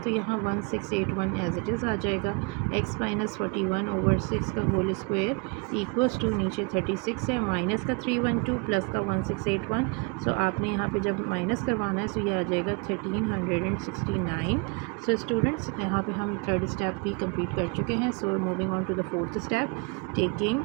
यहाँ 1681 एज इट इज़ आ जाएगा। x माइनस 41 over 6 का होल स्क्वायर इक्वल्स टू, नीचे 36 है, माइनस का 312 प्लस का 1681। सो आपने यहाँ पे जब माइनस करवाना है सो ये आ जाएगा 1369। सो स्टूडेंट्स यहाँ पे हम थर्ड स्टेप भी कंप्लीट कर चुके हैं। So moving on to the fourth step, taking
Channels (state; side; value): quieter; left; 32.1 dB